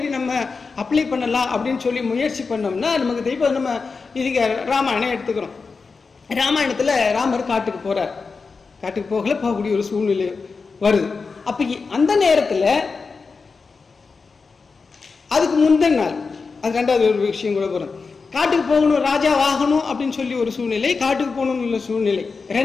நம்ம அப்ளை பண்ணலாம் அப்படின்னு சொல்லி முயற்சி பண்ணோம்னா நமக்கு இப்போ நம்ம இதுக்கு ராமாயணம் எடுத்துக்கிறோம். ராமாயணத்தில் ராமர் காட்டுக்கு போகிறார். காட்டுக்கு போகக்கூடிய ஒரு சூழ்நிலை வருது. அப்போ அந்த நேரத்தில் அதுக்கு முந்தின நாள் அது ரெண்டாவது ஒரு விஷயம் கூட போகிறோம். காட்டுக்கு போகணும், ராஜா ஆகணும் அப்படின்னு சொல்லி ஒரு சூழ்நிலை, காட்டுக்கு போகணும்னு சூழ்நிலை.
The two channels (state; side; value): quieter; right; 4.6 dB